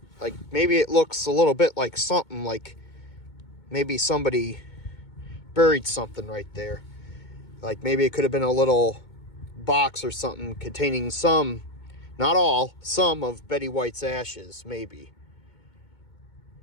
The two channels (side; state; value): right; late; 2.2 ms